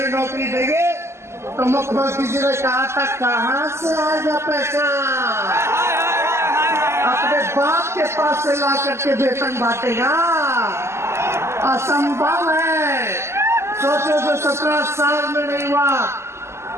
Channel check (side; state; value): left; late; 0.13 ms